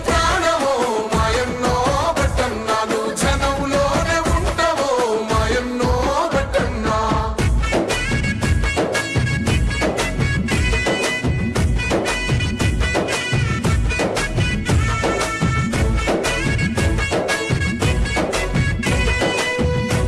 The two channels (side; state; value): both; identical; correlation 1.00